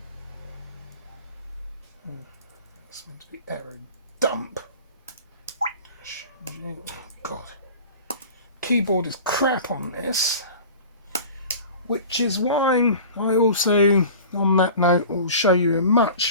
It's meant to be error dump. God. Keyboard is crap on this, which is why I also, on that note, will show you a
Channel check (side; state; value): both; inverted; correlation -0.40